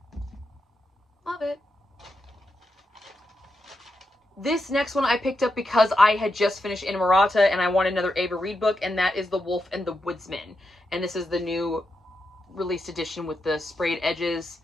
Love it. This next one I picked up because I had just finished Inamorata and I wanted another Ava Reed book, and that is The Wolf and the Woodsman. And this is the new released edition with the sprayed edges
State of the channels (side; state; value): both; normal; correlation 0.85